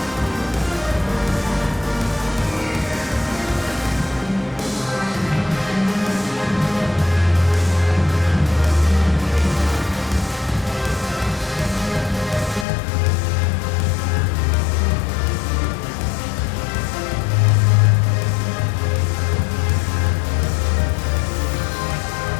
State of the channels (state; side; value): drops out; right; at 12.7 s